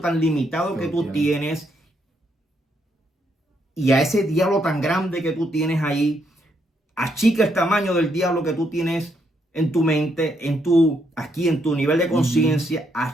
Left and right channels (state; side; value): normal; both; correlation 0.76